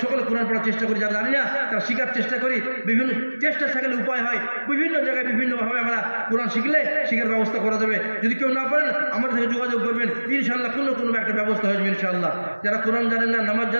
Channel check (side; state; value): both; inverted; correlation -1.00